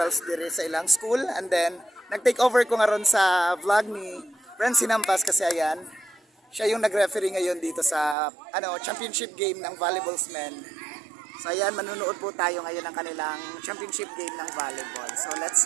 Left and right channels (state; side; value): drops out; left; at 8.2 s